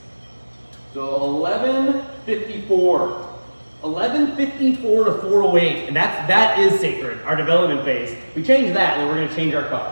So 11:54. 11:54 to 4:08, and that is sacred, our development phase. We change that, and we're going to change our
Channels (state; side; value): inverted; both; correlation -1.00